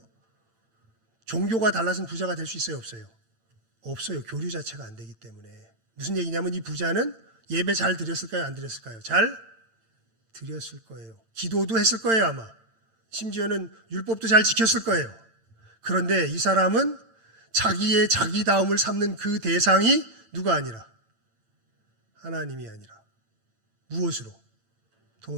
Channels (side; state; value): left; late; 8.9 ms